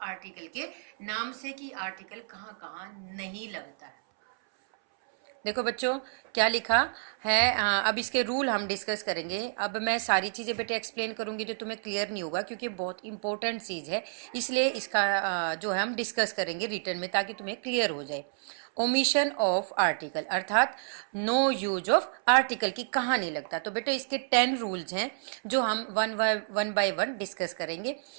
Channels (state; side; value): silent; left; 58 dB below the other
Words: आर्टिकल के नाम से कि आर्टिकल कहाँ कहाँ नहीं लगता है। देखो बच्चों, क्या लिखा है। अब इसके रूल हम डिस्कस करेंगे। अब मैं सारी चीज़ें बेटे एक्सप्लेन करूंगी तो तुम्हें क्लियर नहीं होगा, क्योंकि बहुत इंपॉर्टेंट चीज़ है, इसलिए इसका जो है हम डिस्कस करेंगे रिटर्न में, ताकि तुम्हें क्लियर हो जाए। ओमिशन ऑफ आर्टिकल अर्थात नो यूज ऑफ आर्टिकल की कहाँ नहीं लगता। तो बेटे इसके 10 रूल्स हैं जो हम वन बाय वन डिस्कस करेंगे।